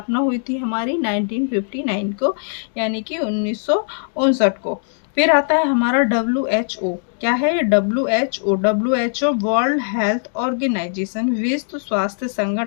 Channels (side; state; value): right; silent; digital silence